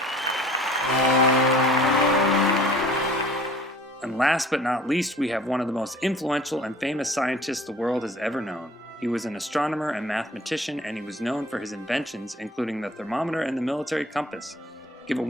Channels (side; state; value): both; normal; correlation 0.49